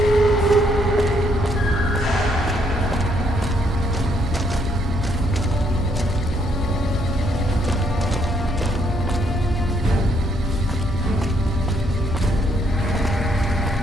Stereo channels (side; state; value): both; normal; correlation 0.72